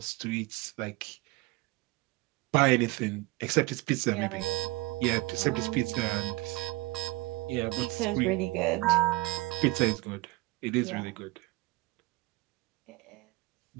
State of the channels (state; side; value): quieter; left; 21.6 dB